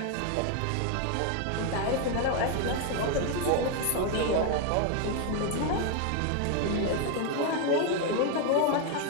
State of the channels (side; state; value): both; different; correlation 0.01